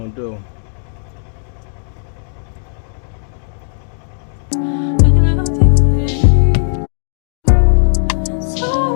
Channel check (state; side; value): silent; right; digital silence